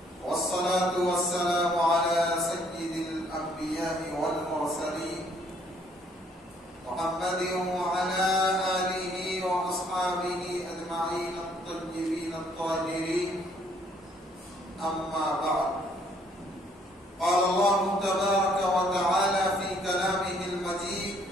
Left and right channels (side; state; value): both; normal; correlation 0.65